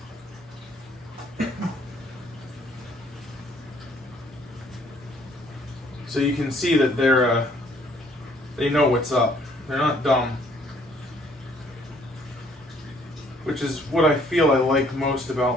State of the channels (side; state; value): both; normal; correlation 0.63